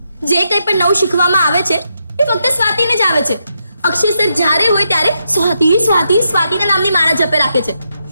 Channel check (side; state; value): both; inverted; correlation -0.82